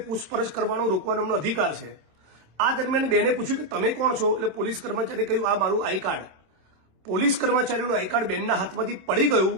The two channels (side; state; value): left; late; 27 ms